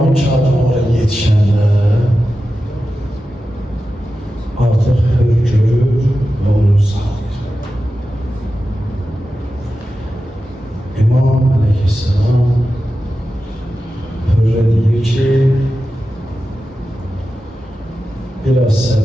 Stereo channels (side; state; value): both; normal; correlation 0.92